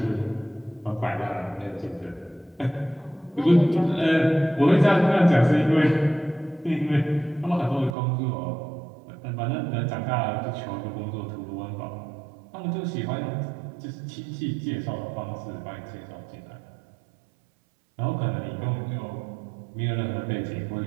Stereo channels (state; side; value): drops out; left; at 8.0 s